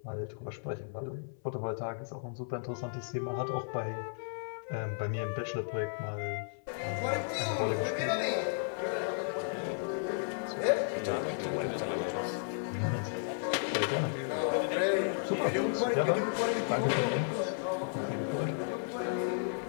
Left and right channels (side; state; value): right; silent; 55 dB below the other